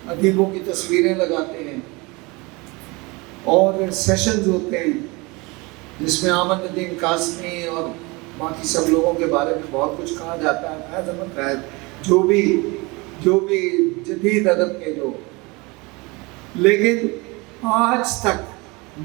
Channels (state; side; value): quieter; left; 25.6 dB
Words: ادیبوں کی تصویریں لگاتے ہیں, اور سیشنز ہوتے ہیں جس میں احمد ندیم قاسمی اور باقی سب لوگوں کے بارے میں بہت کچھ کہا جاتا ہے. فیض احمد فیض, جو بھی جدید ادب کے جو. لیکن آج تک